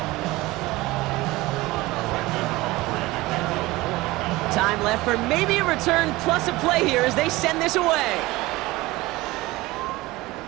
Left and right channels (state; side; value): quieter; left; 20.0 dB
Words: Time left for maybe a return plus a play here as they send this away.